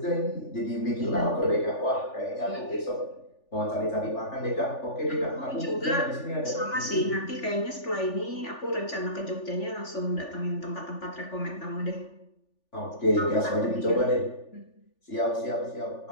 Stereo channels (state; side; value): late; right; 3.4 ms